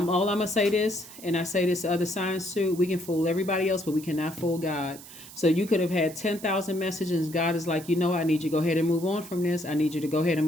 gonna say this, and I say this to other signs too. We can fool everybody else, but we cannot fool God. So you could have had 10,000 messages. God is like, I need you to go ahead and move on from this. I need you to go ahead and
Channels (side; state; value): right; noise; hiss, 17 dB below the sound